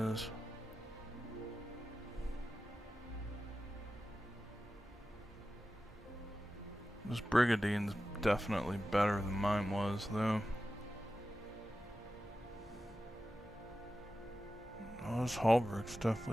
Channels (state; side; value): normal; both; correlation 0.93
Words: This Brigadine's definitely better than mine was, though. Oh, this Halberg's